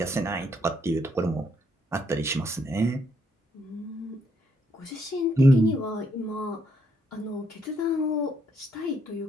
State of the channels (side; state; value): both; normal; correlation 0.73